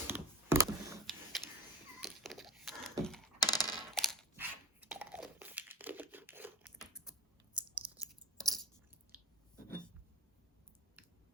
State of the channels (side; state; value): both; normal; correlation 0.29